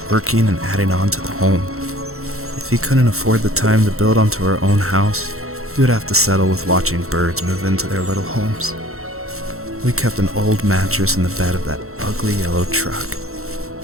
working and adding on to the home. If he couldn't afford the time to build onto our own house, he would have to settle with watching birds move into their little homes. We kept an old mattress in the bed of that ugly yellow truck,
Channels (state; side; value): late; left; 0.63 ms